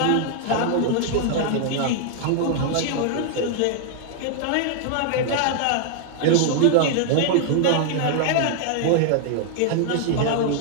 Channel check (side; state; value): both; different; correlation 0.00